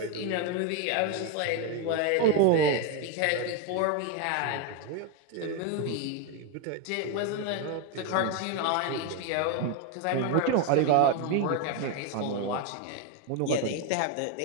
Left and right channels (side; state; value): both; different; correlation 0.02